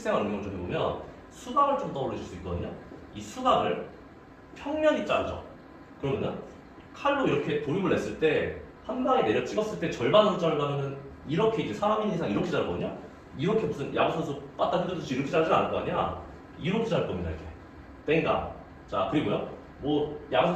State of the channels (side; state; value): both; identical; correlation 1.00